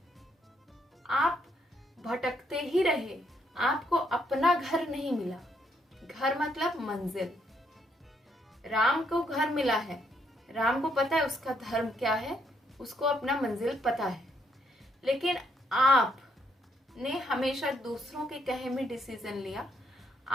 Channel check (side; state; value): both; normal; correlation 0.74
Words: आप भटकते ही रहे, आपको अपना घर नहीं मिला। घर मतलब मंजिल। राम को घर मिला है, राम को पता है उसका धर्म क्या है, उसको अपना मंजिल पता है, लेकिन आपने हमेशा दूसरों के कहे में डिसीजन लिया,